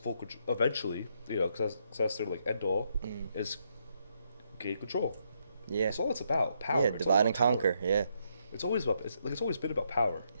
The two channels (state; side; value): inverted; both; correlation -0.77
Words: control eventually. Because that's their like end all is gain control. Yeah. That's all it's about. Power. Yeah, It's all divide and about power. conquer. Yeah. It's always about. It's always been about power.